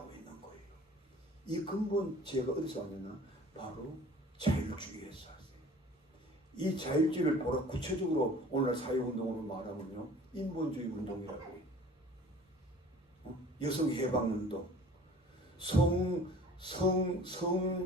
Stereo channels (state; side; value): normal; both; correlation 0.47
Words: 있는 거예요. 이 근본 죄가 어디서 왔느냐? 바로 자율주의에서 왔어요. 이 자율주의를 보라 구체적으로 오늘날 사회운동으로 말하면요, 인본주의 운동이라고 해요. 여성 해방운동,